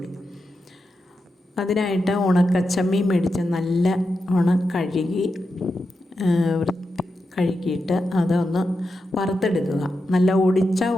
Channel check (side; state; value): both; normal; correlation 0.88